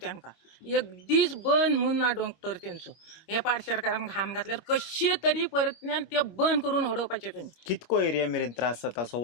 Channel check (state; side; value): late; right; 25 ms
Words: एक दीस बंद म्हूण ना डॉक्टर तेंचो. हे पाडशेकारान घाण घातल्यार कशे तरी परतल्यान ते बंद करून उडोवपाचें तुमी. कितको एरिया मेरेन त्रास जाता, असो